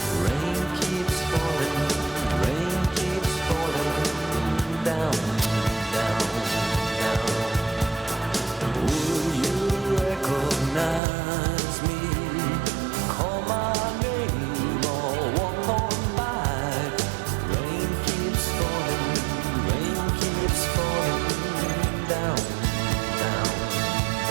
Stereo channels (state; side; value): drops out; left; at 11.0 s